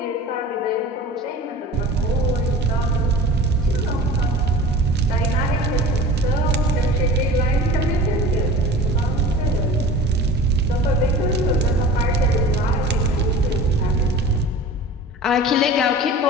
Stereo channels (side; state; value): both; normal; correlation 0.38